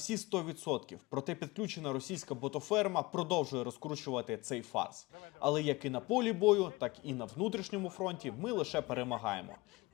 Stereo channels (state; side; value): quieter; right; 22.5 dB